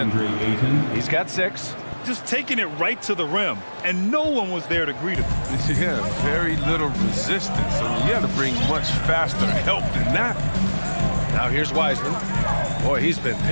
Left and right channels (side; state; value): both; inverted; correlation -1.00